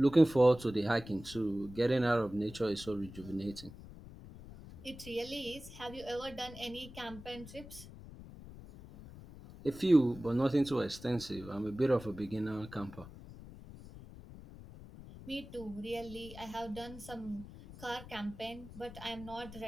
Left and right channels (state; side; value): noise; left; rumble, 15 dB below the sound